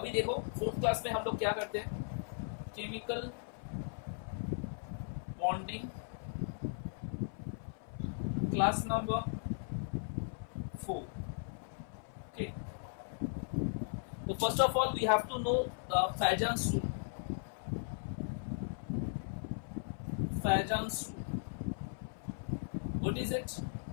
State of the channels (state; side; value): silent; right; 53 dB below the other